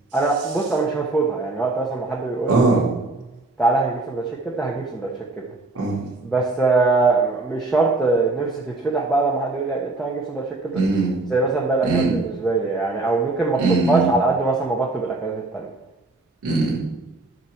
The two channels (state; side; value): quieter; left; 3.1 dB